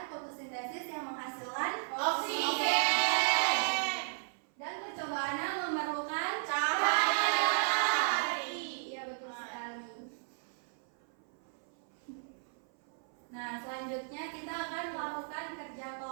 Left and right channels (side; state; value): left; silent; 55 dB below the other